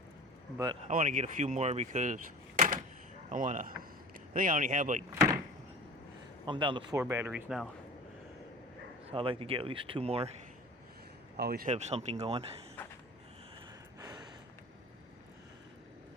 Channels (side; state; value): both; normal; correlation 0.38